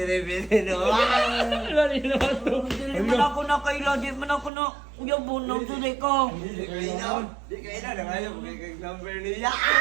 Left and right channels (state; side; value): drops out; left; at 4.5 s